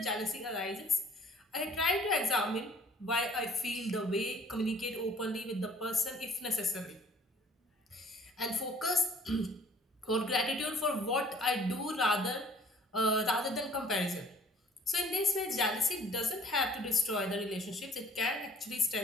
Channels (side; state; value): both; normal; correlation 0.55